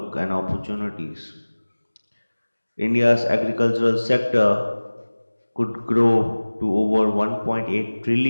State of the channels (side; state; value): both; inverted; correlation -1.00